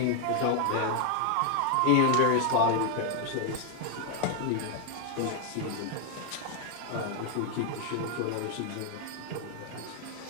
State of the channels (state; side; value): different; both; correlation 0.00